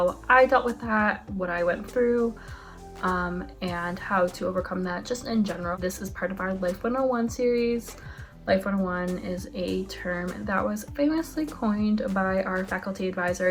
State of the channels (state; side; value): identical; both; correlation 1.00